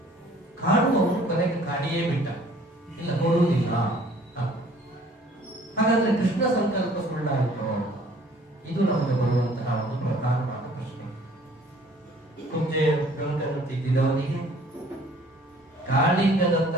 ಕಾಡುವವರು ಕೊನೆಗೆ ಕಾಡಿಯೇ ಬಿಟ್ಟ, ಇಲ್ಲ ನೋಡುವುದಿಲ್ಲ. ಹಾಗಾದ್ರೆ ಕೃಷ್ಣ ಸಂಕಲ್ಪ ಸುಳ್ಳಾಯಿತು? ಇದು ನಮಗೆ ಬರುವಂತಹ ಒಂದು ಪ್ರಧಾನವಾದ ಪ್ರಶ್ನೆ. ಕುಬ್ಜೆಯ ಗಂಟನ್ನು ತಿದ್ದಿದವನಿಗೆ,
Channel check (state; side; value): normal; both; correlation 0.55